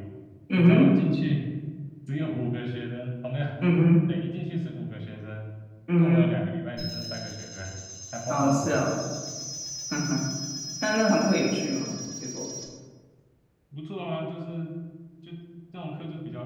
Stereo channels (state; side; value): identical; both; correlation 1.00